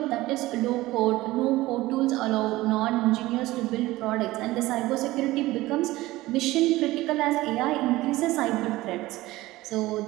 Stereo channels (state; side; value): quieter; left; 18.1 dB